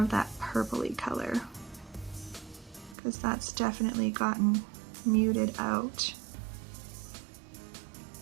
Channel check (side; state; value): left; drops out; at 3.0 s